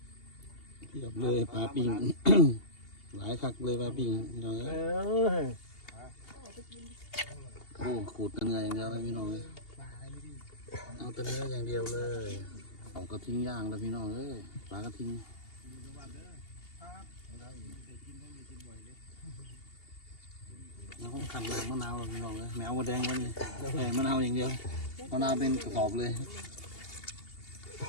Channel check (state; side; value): late; right; 2.8 ms